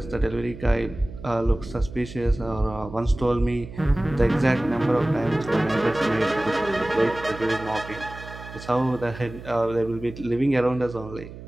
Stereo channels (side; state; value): right; noise; hum, 14 dB below the sound